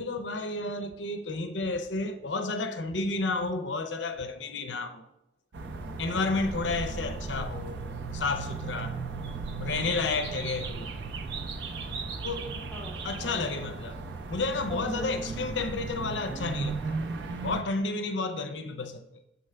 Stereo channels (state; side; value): normal; both; correlation 0.28